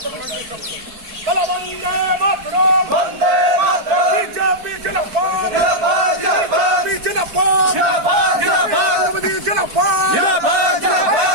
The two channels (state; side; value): late; left; 4.5 ms